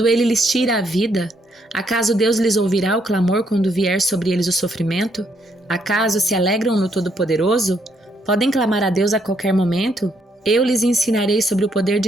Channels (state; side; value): normal; both; correlation 0.73